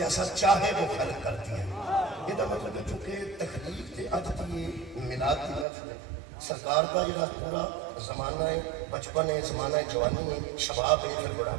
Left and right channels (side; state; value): left; drops out; at 5.7 s